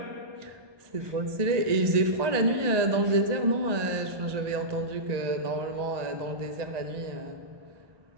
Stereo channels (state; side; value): late; left; 1.8 ms